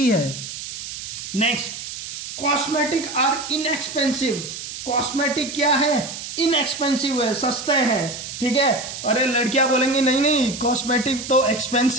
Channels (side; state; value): right; noise; hiss, 9 dB below the sound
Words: है। Next, cosmetic are inexpensive. Cosmetic क्या है? इनएक्सपेंसिव है, सस्ते हैं, ठीक है। अरे लड़कियां बोलेंगी नहीं नहीं कॉस्मेटिक तो